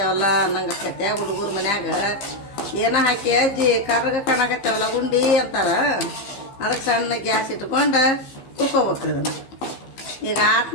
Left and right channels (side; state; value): right; late; 15 ms